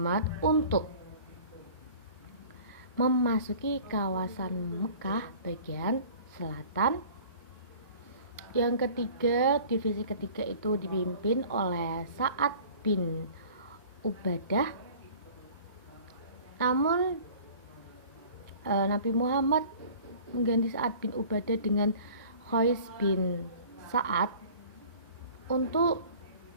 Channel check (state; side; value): inverted; both; correlation -0.46